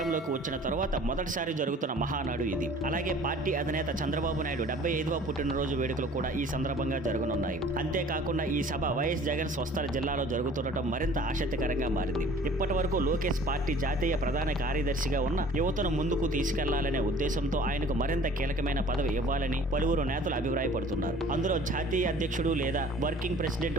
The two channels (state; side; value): normal; both; correlation 0.49